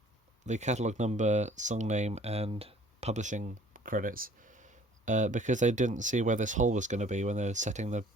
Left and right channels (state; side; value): normal; both; correlation 0.54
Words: the catalogue number, song name and publishing credits, because they didn't see where this hole was going to be when they were setting the